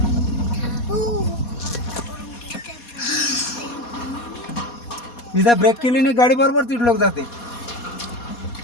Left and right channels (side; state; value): right; late; 4.2 ms